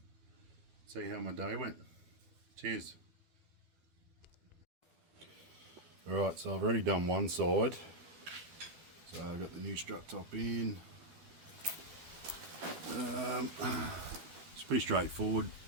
see how my day went. Cheers. Alright, so I've already done one side. So I've got the new strut top in. It's pretty straightforward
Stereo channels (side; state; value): left; late; 12 ms